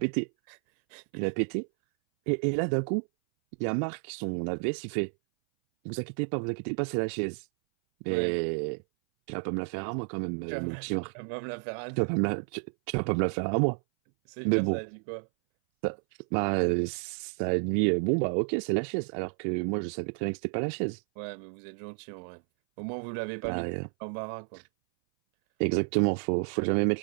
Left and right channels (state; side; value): silent; left; 57 dB below the other